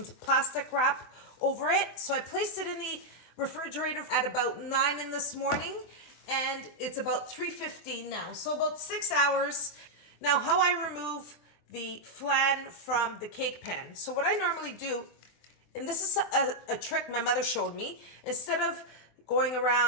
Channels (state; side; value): late; right; 24 ms